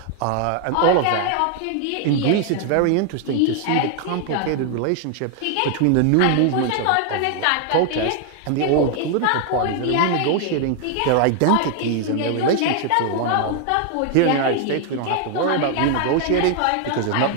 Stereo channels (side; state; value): both; different; correlation 0.00